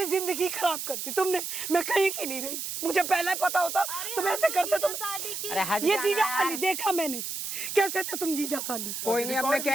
जिंदगी खराब कर दी तुमने। मैं कहीं की नहीं रही, मुझे पहले पता होता तुम ऐसे करते। तुम अरे हट ये जाना जीजा यार। साली देखा मैंने, कैसे थे तुम जीजा साली। कोई नहीं, अब मैं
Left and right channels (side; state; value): right; noise; hiss, 5 dB below the sound